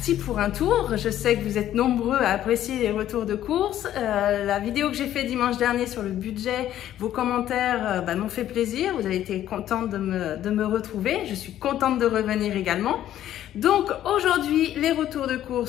pour un tour. Je sais que vous êtes nombreux à apprécier les retours de course. La vidéo que j'ai fait dimanche dernier sur le budget, vos commentaires m'ont fait plaisir. Vous avez été contente de me retrouver. Je suis contente de revenir également. Donc aujourd'hui, les retours de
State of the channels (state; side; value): quieter; right; 12.0 dB